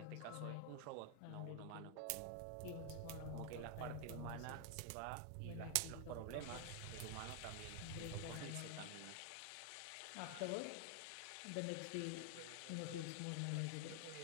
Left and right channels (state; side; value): different; both; correlation 0.00